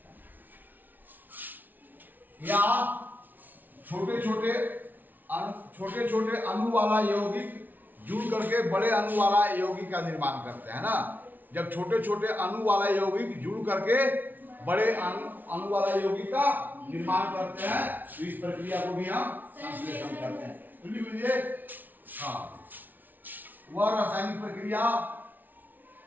या छोटे छोटे अणु वाला यौगिक जुड़ करके बड़े अणु वाला यौगिक का निर्माण करते हैं ना। जब छोटे छोटे अणु वाला यौगिक जुड़ करके बड़े अणु वाला यौगिक का निर्माण करते हैं तो इस प्रक्रिया को भी हम संश्लेषण करते हैं। तो लिख लीजिए, हाँ, वह रासायनिक प्रक्रिया,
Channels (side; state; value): left; late; 0.084 ms